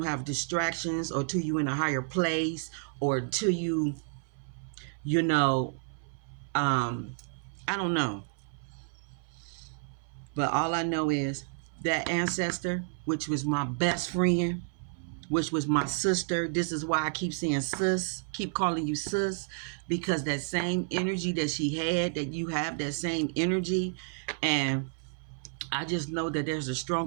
have distractions or till you in a higher place or till you know, I don't know. But all I know is that ancestor, which was my best friend, which was my sister. This is why I keep saying sis, keep calling you sis, because that same energy that she had, that you have that same energy. And I just know that there's a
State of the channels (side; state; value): left; silent; 57 dB below the other